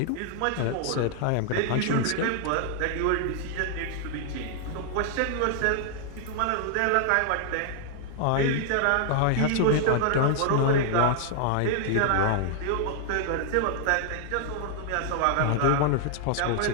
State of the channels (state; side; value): different; both; correlation -0.01